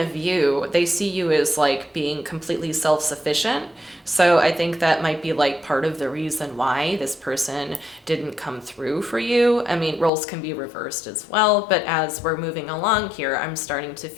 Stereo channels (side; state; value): right; drops out; at 10.1 s